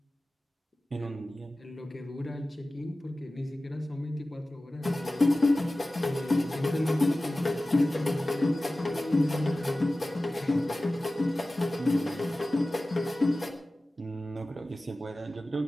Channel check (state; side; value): normal; both; correlation 0.96